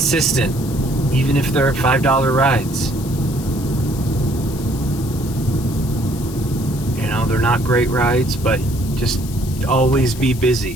even if they're $5 rides. You know, they're not great rides, but just always be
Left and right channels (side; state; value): left; noise; hiss, 15 dB below the sound